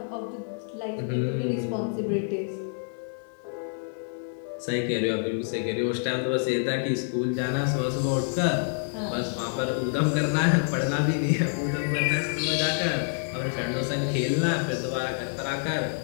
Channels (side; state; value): right; silent; digital silence